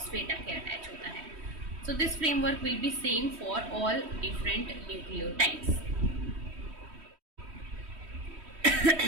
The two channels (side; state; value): left; late; 3.1 ms